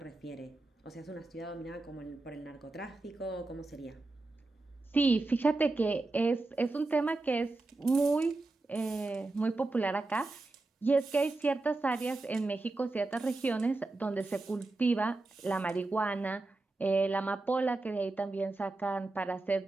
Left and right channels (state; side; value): quieter; left; 3.2 dB